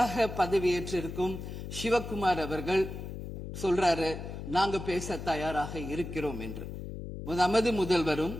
பதவியேற்றிருக்கும் சிவகுமார் அவர்கள் சொல்றாரு, நாங்க பேச தயாராக இருக்கிறோம் என்று. நமது முதல்வரும்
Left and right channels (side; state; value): left; noise; hum, 8 dB below the sound